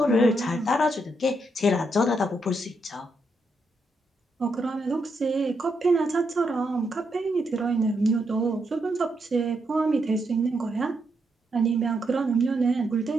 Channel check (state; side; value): normal; both; correlation 0.80